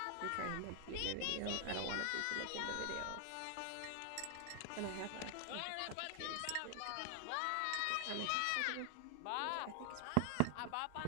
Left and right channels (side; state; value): both; different; correlation 0.00